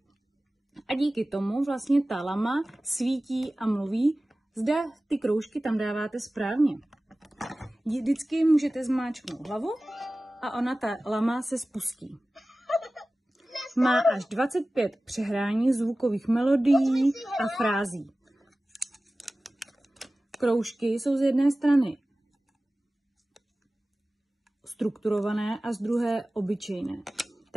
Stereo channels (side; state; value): both; normal; correlation 0.97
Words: a díky tomu vlastně ta lama svítí a mluví, zda ty kroužky tam dáváte správně. Vždycky můžete zmáčknout hlavu a ta lama se spustí. Má až 25 přehrání zvukových melodií a frází. Kroužky jsou z jedné strany strukturované a z druhé obyčejné.